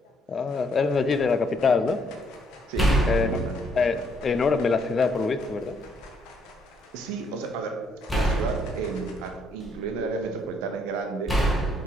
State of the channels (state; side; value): normal; both; correlation 0.70